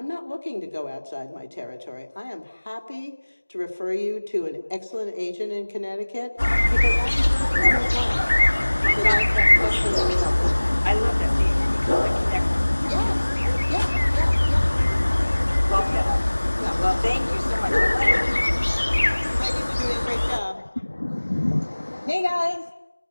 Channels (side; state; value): both; inverted; correlation -1.00